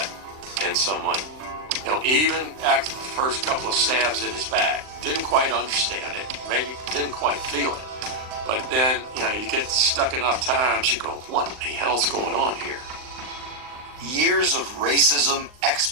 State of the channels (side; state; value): left; late; 39 ms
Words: in someone. You know, even after the first couple of stabs in his back, didn't quite understand it, maybe didn't quite feel it. But then, you know, you get stuck enough times, you go, what the hell's going on here? Years of racism,